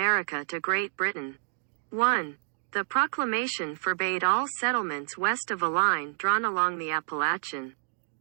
to Great Britain. 1. The proclamation forbade all settlements west of a line drawn along the Appalachian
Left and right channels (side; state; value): left; silent; digital silence